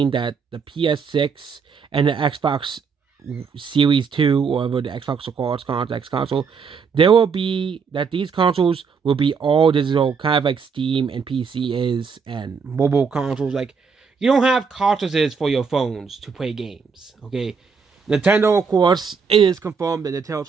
that the PS6 and the Xbox Series 2, or whatever the Xbox will call its X console, there will be that these consoles will be all digital, kind of like Steam and PC is, and mobile consoles. Like, you don't have cartridges for your phones to play games, okay? Nintendo, of course, it is confirmed that Nintendo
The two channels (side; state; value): left; quieter; 5.7 dB